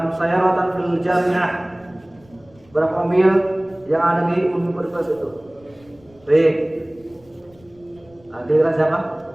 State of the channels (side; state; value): left; noise; rumble, 29 dB below the sound